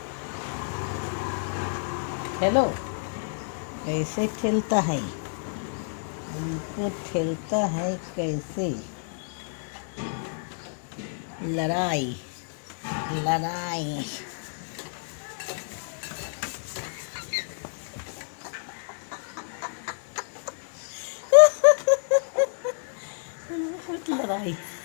हेलो, कैसे खेलता है, इनको खेलता है कैसे। लड़ाई लड़ाई। लड़ाई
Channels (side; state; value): right; silent; digital silence